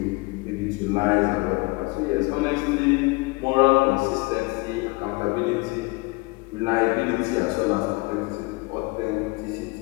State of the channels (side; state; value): right; quieter; 26.3 dB